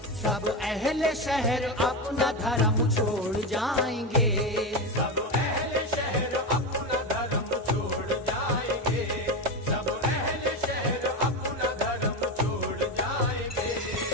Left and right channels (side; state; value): both; normal; correlation 0.16